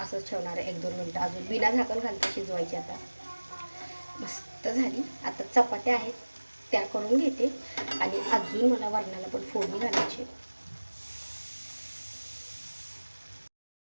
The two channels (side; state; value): both; inverted; correlation -1.00